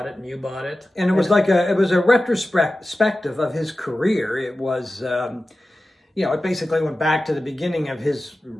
it and you bought it. And it was a retrospective of his career. It was it basically went back to the beginning of his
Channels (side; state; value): both; normal; correlation 0.94